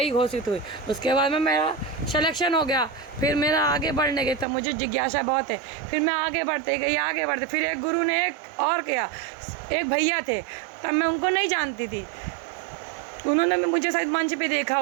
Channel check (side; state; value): left; drops out; at 4.5 s